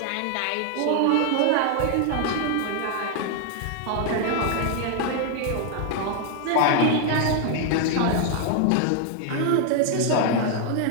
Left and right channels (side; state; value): both; different; correlation 0.00